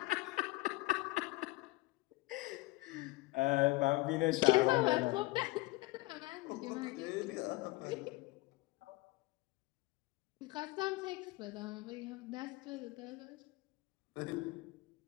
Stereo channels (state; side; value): quieter; right; 20.4 dB